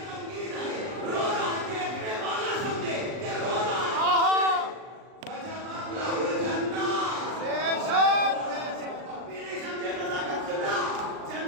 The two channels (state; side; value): late; left; 39 ms